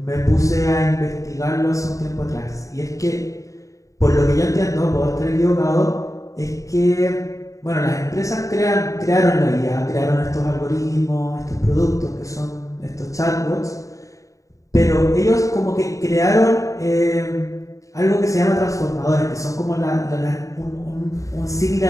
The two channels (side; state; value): right; late; 0.16 ms